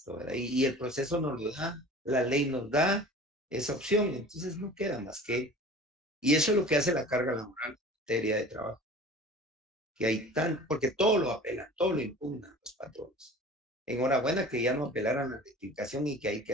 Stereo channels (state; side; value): normal; both; correlation 0.42